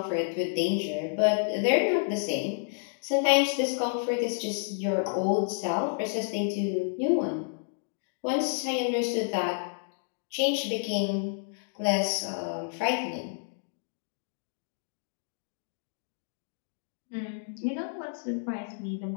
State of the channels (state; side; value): silent; right; digital silence